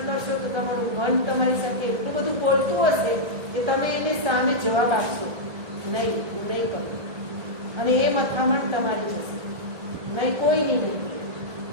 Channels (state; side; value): late; left; 1.3 ms